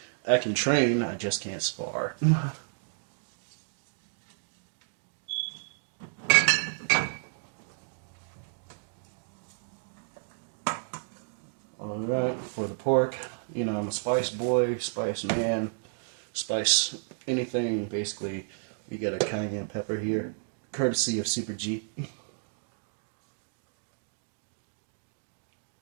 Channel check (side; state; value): left; silent; digital silence